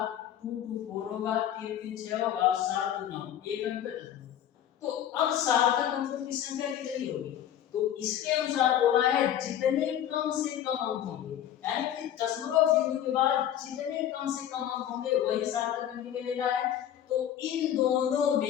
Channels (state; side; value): quieter; right; 10.6 dB